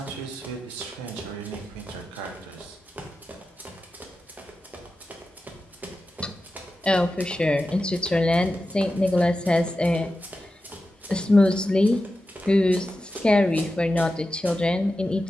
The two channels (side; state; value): both; normal; correlation 0.92